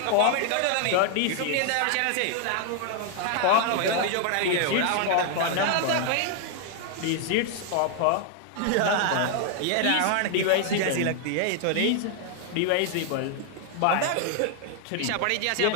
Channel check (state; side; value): different; both; correlation 0.00